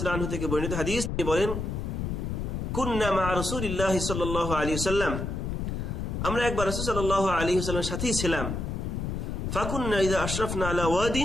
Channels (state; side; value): noise; left; rumble, 3 dB below the sound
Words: তাআলা আনহু থেকে বর্ণিত হাদিস। তিনি বলেন, কুন্না মা রাসূলিল্লাহি সাল্লাল্লাহু আলাইহি ওয়াসাল্লাম, আমরা একবার রাসূল সাল্লাল্লাহু আলাইহি ওয়াসাল্লামের সাথেই ছিলাম। ফাকুন্না ইযা আশরাফনা আলা